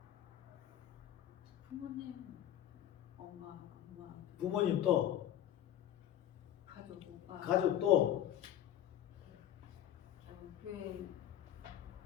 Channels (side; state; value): right; quieter; 11.5 dB